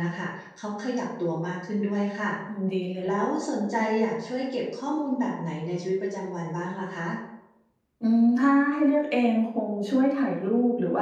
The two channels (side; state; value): both; identical; correlation 1.00